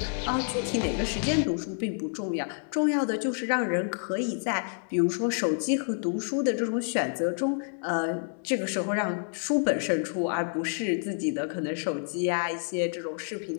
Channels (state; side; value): silent; right; 59 dB below the other